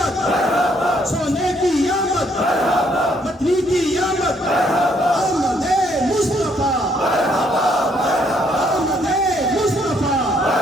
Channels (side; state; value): both; normal; correlation 0.69